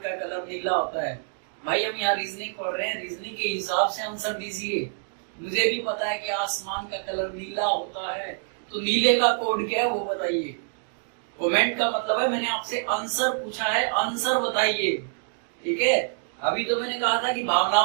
का कलर नीला होता है. भाई हम यहाँ रीजनिंग पढ़ रहे हैं, रीजनिंग के हिसाब से आंसर दीजिए. मुझे भी पता है कि आसमान का कलर नीला होता है, तो नीले का कोड क्या है वो बताइए. कमेंट का मतलब है मैंने आपसे आंसर पूछा है, आंसर बताइए. ठीक है. अभी तो मैंने कहा था कि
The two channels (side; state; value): left; silent; digital silence